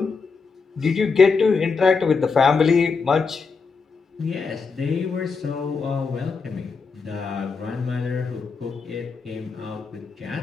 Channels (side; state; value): right; quieter; 4.9 dB